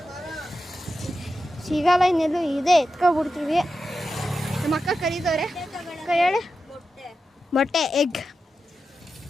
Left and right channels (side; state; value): both; normal; correlation 0.90